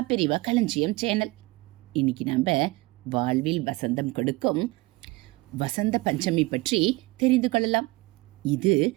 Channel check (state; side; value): quieter; left; 22.1 dB